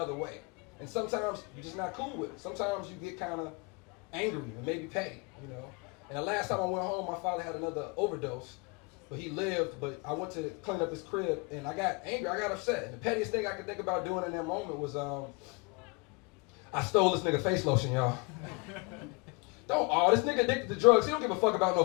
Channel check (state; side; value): quieter; right; 29.7 dB